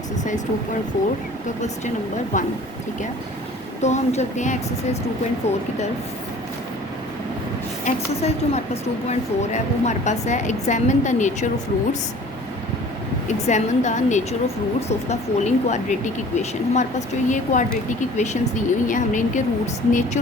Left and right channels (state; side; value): normal; both; correlation 0.48